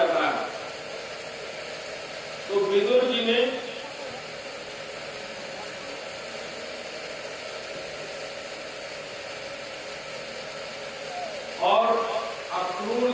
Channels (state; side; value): identical; both; correlation 1.00